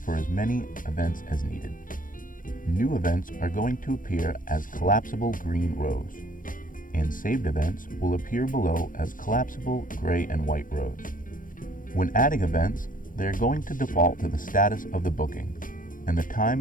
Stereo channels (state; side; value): late; right; 0.40 ms